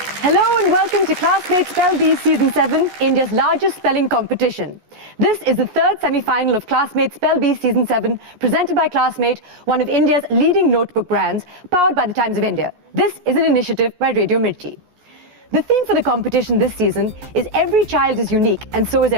Hello and welcome to Classmate Spell Bee Season 7, India's largest spelling competition. This is the third semi-final of Classmate Spell Bee Season 7, presented by Classmate, one of India's leading notebook brands, powered by the Times of India. This is an initiative by Radio Mirchi. The theme for the competition this season is every child is unique and so is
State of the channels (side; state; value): left; late; 14 ms